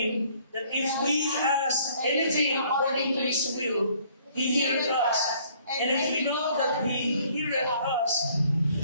that if we ask anything according to His will, He heareth us. And if we know that He heareth us,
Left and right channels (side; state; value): both; inverted; correlation -0.60